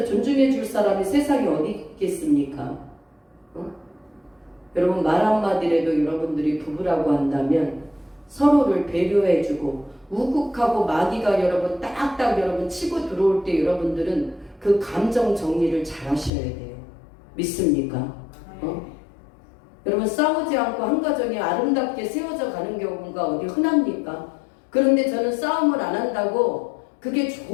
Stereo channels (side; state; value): right; drops out; at 16.3 s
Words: 존중해줄 사람이 세상에 어디 있겠습니까? 여러분 말 한마디라도 여러분들이 부부라고 한다면 서로를 배려해주고 우국하고 마귀가 여러분 딱딱 여러분 치고 들어올 때 여러분들은 그 감정 정리를 잘 하셔야 돼요. 믿습니까? 여러분 싸우지 않고 한 가정이 아름답게 세워져 가는 경우가 어디 흔합니까? 그런데 저는 싸움을 안 한다고 그게